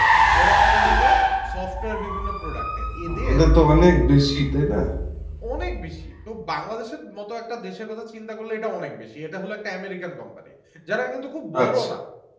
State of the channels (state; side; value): identical; both; correlation 1.00